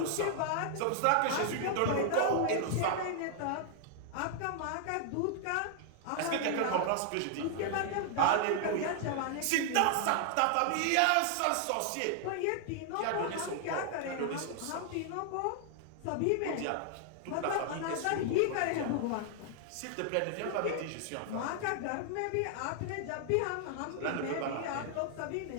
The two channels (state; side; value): different; both; correlation 0.00